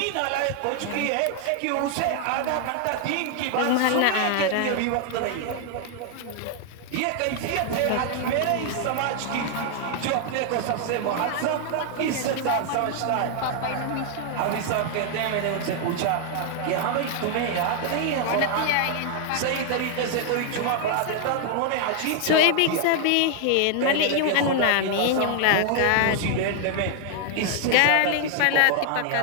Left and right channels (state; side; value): different; both; correlation 0.00